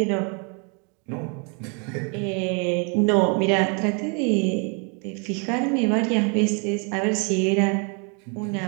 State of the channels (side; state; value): left; quieter; 36.1 dB